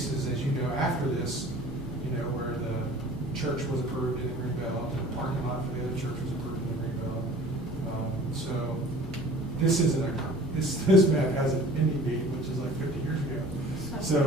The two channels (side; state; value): both; normal; correlation 0.46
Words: as you know, after this, where the church was approved in the Greenbelt, and the parking lot for the other church was approved in the Greenbelt. So this map has an ending date, which is like 50 years ago.